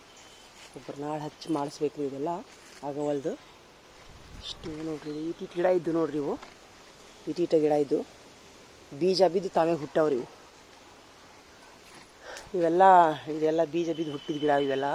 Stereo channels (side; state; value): both; identical; correlation 1.00